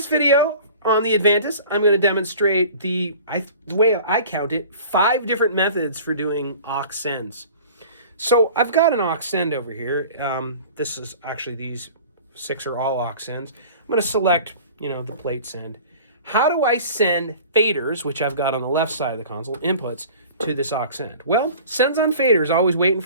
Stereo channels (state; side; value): inverted; both; correlation -0.42